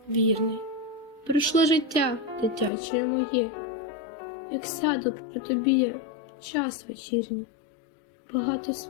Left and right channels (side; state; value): right; drops out; at 2.7 s